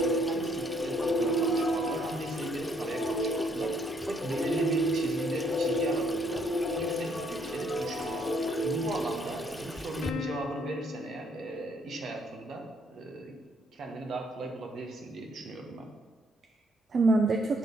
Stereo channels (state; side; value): normal; both; correlation 0.68